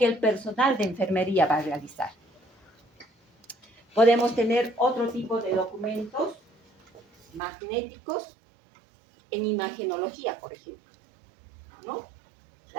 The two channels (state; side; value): drops out; left; at 7.4 s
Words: el personal de enfermería va a realizar. Podemos tener otro tipo de documentos magnéticos en imagenología, por ejemplo, ¿no?